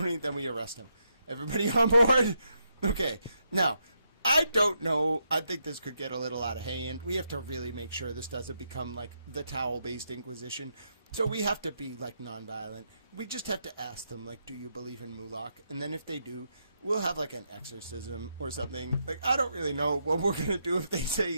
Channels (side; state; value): both; inverted; correlation -0.81